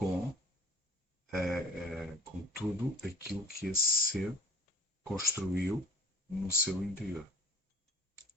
tudo aquilo que esse ser construiu no seu interior.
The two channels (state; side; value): normal; both; correlation 0.46